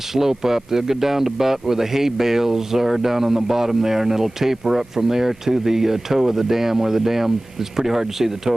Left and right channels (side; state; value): both; normal; correlation 0.98